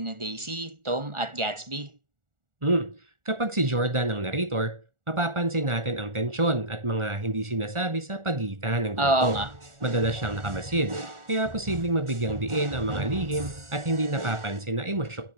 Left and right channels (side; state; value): left; late; 1.4 ms